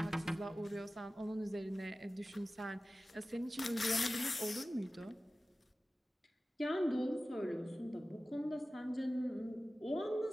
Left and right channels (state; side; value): normal; both; correlation 0.96